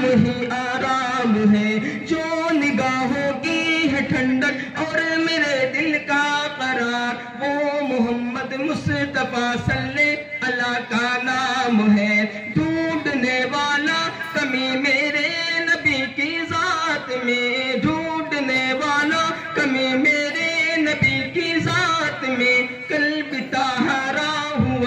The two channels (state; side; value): identical; both; correlation 1.00